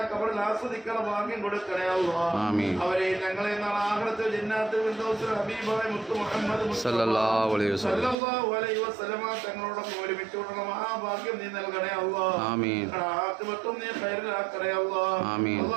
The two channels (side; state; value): left; drops out; at 8.2 s